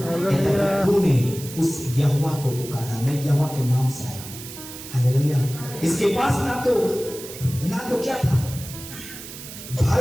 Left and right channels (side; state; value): right; noise; hiss, 13 dB below the sound